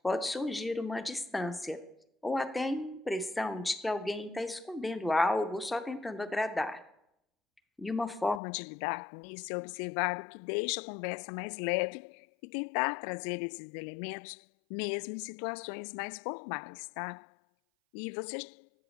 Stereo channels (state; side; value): drops out; right; at 8.4 s